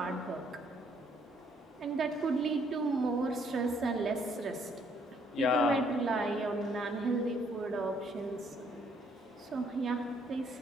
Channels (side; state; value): both; normal; correlation 0.67